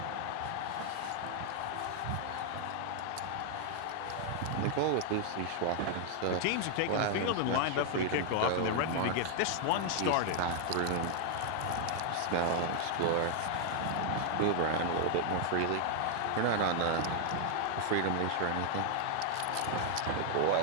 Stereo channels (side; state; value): both; different; correlation 0.00